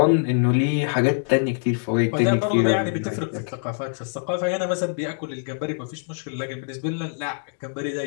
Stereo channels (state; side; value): silent; right; digital silence